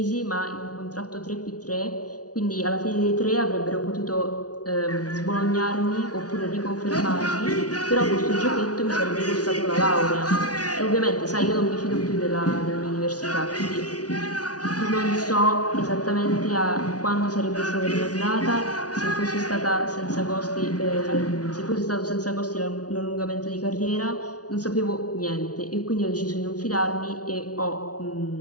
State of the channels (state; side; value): late; right; 0.68 ms